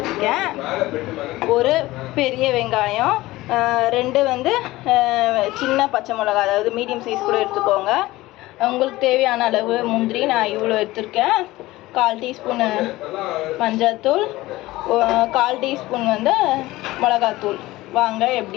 ஒரு பெரிய வெங்காயம், 2 வந்து சின்ன பச்சை மிளகா, அதாவது மீடியம் சைஸ் கூட எடுத்துக்கோங்க. உங்களுக்கு தேவையான அளவு முந்திரி நான் இவ்வளோ எடுத்துருக்கேன். 1/4 டீஸ்பூன் மஞ்சள்தூள், 1/4 டீஸ்பூன் வந்து மிளகாத்தூள். வாங்க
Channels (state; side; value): quieter; right; 18.3 dB